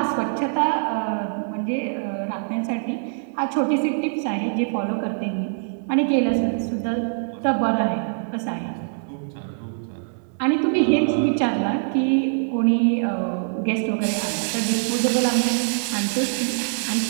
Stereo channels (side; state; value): left; silent; digital silence